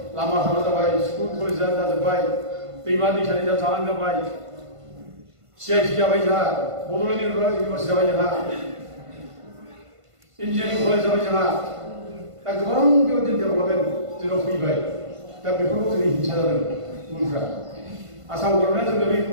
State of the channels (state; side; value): late; left; 1.5 ms